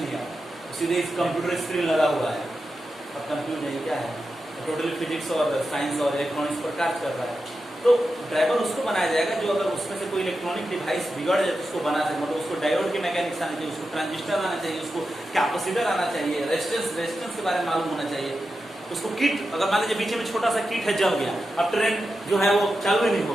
है, सीधे इस कंप्यूटर स्क्रीन लगा हुआ है। अब कंप्यूटर नहीं क्या है, टोटली फिजिक्स और साइंस और इलेक्ट्रॉनिक्स पर कार्य कर रहा है। तो ड्राइवर उसको बनाया जाएगा जो अगर उसमें से कोई इलेक्ट्रॉनिक डिवाइस बिगड़ जाए तो उसको बना सके, मतलब उसको डायोड की मैकेनिक्स आना चाहिए, उसको ट्रांजिस्टर आना चाहिए, उसको कैपेसिटर आना चाहिए, रेजिस्टेंस के बारे में मालूम होना चाहिए, उसको किट, अगर मान लीजिए बीच में छोटा सा किट है जल गया, अब ट्रेन जो है वो चालू ही नहीं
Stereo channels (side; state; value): both; normal; correlation 0.90